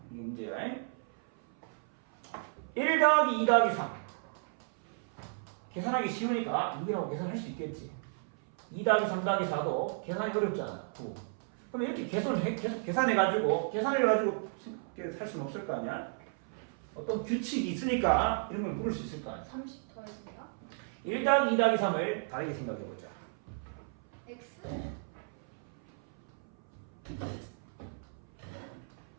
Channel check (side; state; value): left; silent; 55 dB below the other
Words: 이게 문제야. 1 더하기 2 더하기 3. 계산하기 쉬우니까 6이라고 계산할 수 있겠지. 2 더하기 3 더하기 4도 계산이 어렵잖아. 9. 그럼 이렇게 계속 계산해가지고 계산해가지고 할 수는 없을 거 아니야? 어떤 규칙이 있으니까 이런 걸 물을 수 있을 거 아니야? 30 더해집니다. 1 더하기 2 더하기 3을 다르게 생각해보자. X.